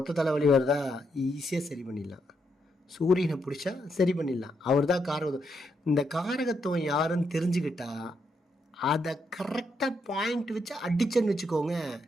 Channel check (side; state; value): both; normal; correlation 0.79